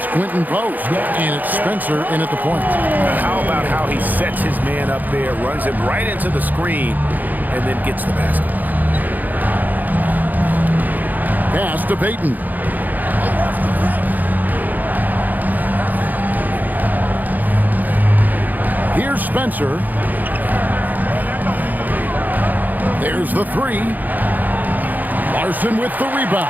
Quentin Post, and it's Spencer in at the point. How about how he sets his man up there, runs him right into the screen, and then gets the basket. Pass to Payton. Here's Spencer. There's the three. Larson with the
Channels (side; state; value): left; late; 0.083 ms